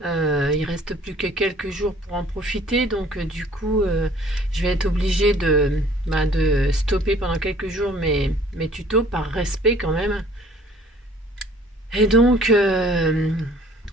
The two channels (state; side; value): normal; both; correlation 0.54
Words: Il reste plus que quelques jours pour en profiter, donc du coup, je vais être obligée de stopper pendant quelques jours mes tutos par respect quand même. Et donc